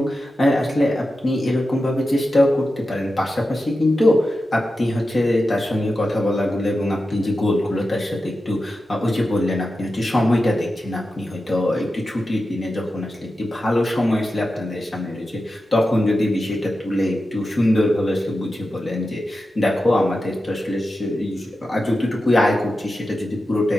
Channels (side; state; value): both; normal; correlation 0.91